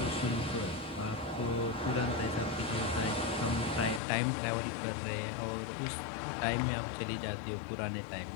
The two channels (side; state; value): right; drops out; at 4.0 s